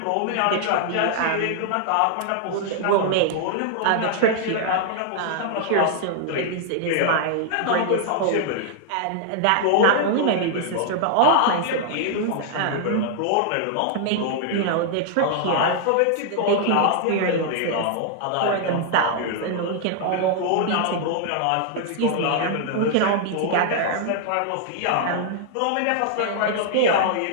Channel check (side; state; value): both; different; correlation -0.01